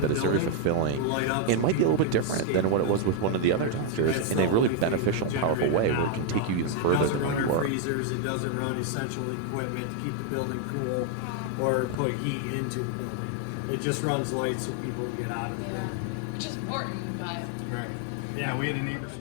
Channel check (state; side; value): different; both; correlation 0.00